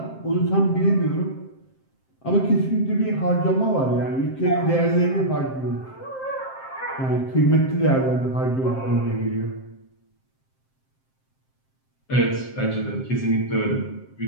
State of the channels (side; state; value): right; late; 7.6 ms